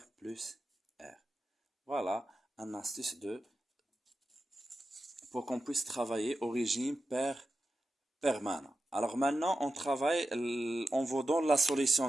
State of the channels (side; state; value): both; normal; correlation 0.91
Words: plus R. Voilà un astuce pour qu'on puisse travailler au régime permanent. Alors maintenant, on vous donne la